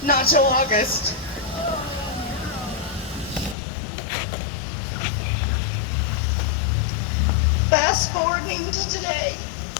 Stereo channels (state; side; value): drops out; right; at 3.6 s